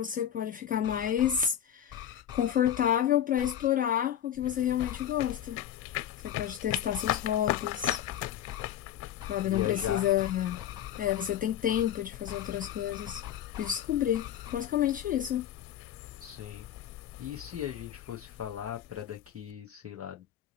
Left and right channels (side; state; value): right; quieter; 10.4 dB